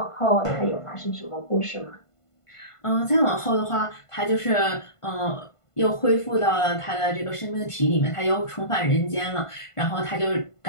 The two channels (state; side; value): late; right; 1.5 ms